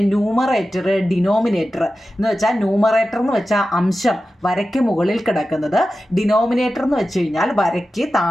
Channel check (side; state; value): both; normal; correlation 0.93